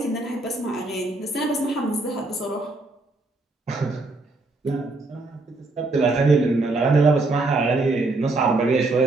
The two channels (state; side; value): quieter; left; 3.2 dB